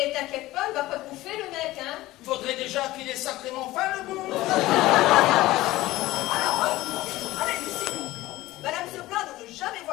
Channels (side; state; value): right; quieter; 17.4 dB